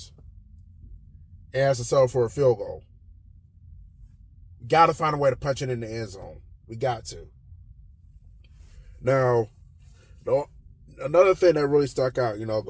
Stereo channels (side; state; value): both; identical; correlation 1.00